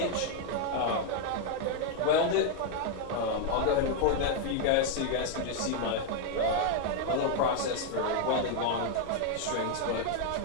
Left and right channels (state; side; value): different; both; correlation 0.00